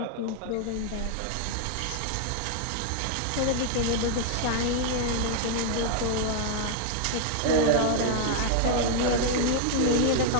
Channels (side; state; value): both; different; correlation 0.00